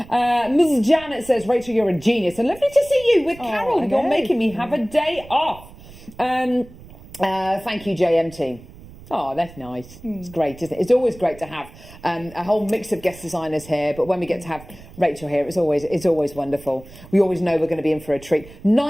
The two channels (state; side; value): noise; right; rumble, 19 dB below the sound